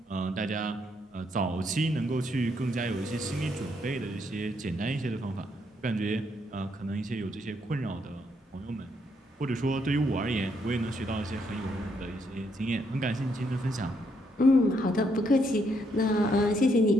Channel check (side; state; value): both; normal; correlation 0.74